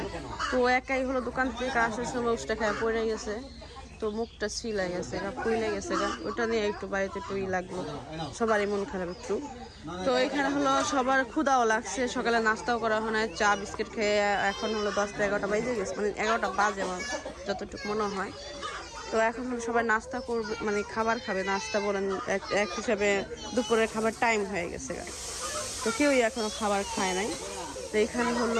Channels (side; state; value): both; identical; correlation 1.00